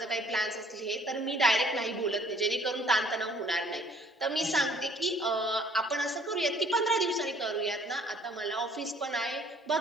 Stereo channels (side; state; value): both; normal; correlation 0.57